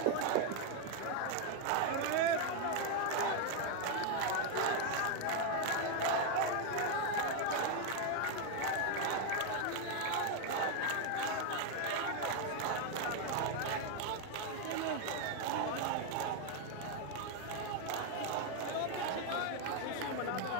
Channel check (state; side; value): different; both; correlation 0.00